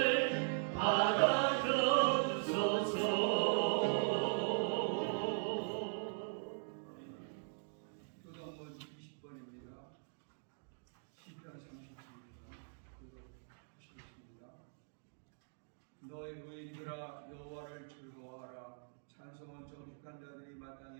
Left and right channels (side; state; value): left; silent; digital silence